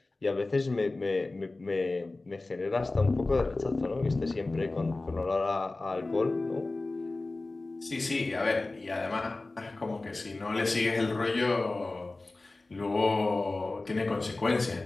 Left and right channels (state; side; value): quieter; right; 3.2 dB